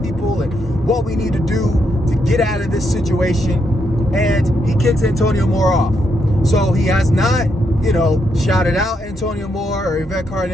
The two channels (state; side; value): normal; both; correlation 0.79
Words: people and what we need to do to get out of this situation. And he kicks Antonio Moore off. So he has not, you know, shouted out Antonio Moore or Yvette